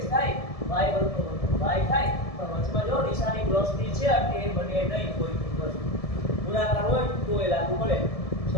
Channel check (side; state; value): right; late; 1.7 ms